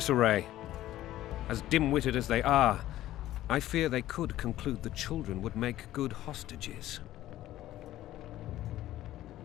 As dim-witted as they are, I fear they could conclude the children would make good hostages.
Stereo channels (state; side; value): quieter; right; 14.3 dB